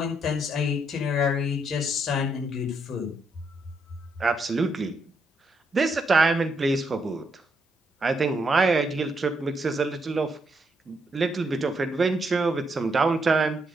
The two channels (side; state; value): both; normal; correlation 0.77